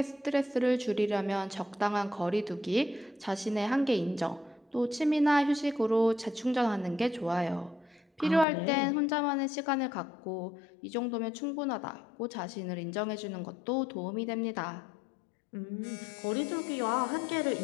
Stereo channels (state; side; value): drops out; right; at 8.5 s